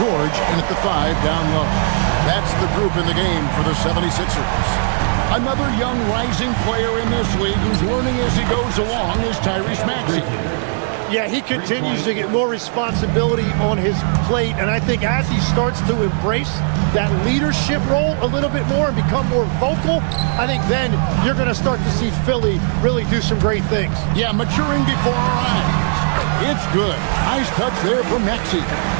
in at the 5 down low. That's the group in the game for the 76ers. Another young rising player in this league who's learning as he goes along is Tyrese Maxey. Yeah, he continues to get more responsibility on his plate, and I think as he starts to embrace that leadership role a little bit more and become more vocal, I think then you're going to start to see Philly really do some great things. Yeah, maturing before our eyes. It's good. Nice touch there from Maxey.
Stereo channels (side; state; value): left; silent; digital silence